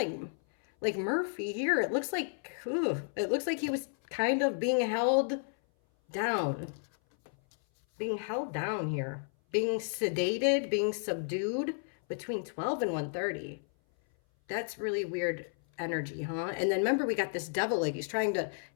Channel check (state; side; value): silent; right; 56 dB below the other